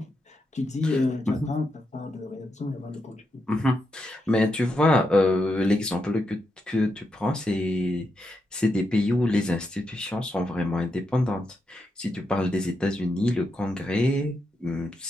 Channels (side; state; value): both; normal; correlation 0.84